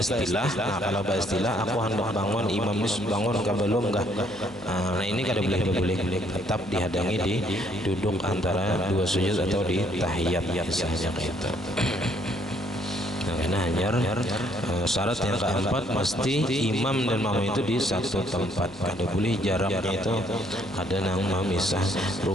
aku hendak bangun, imam ini bangun kah belum kah? Nah, ini kada boleh berbulik, tetap dihadangi di duduk antara dua sujud atau di tahiyat misalnya kayak itu. Nah, hanya syarat yang keempat, mesti imam dan makmum itu di satu tempat. Kada boleh jaraknya itu ada nang memisah.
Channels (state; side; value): noise; left; hum, 25 dB below the sound